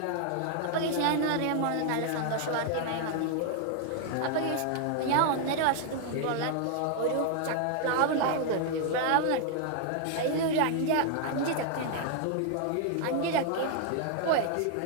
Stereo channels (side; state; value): both; different; correlation 0.00